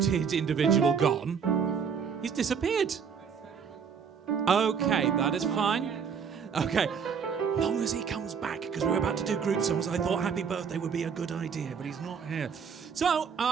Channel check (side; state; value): left; quieter; 6.6 dB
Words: individual gone? He's disappeared. Okay, that is fine. Okay. Long as he comes back, because we're about to do group songs, I thought Happy Birthday would be a good idea, but he's not here. So,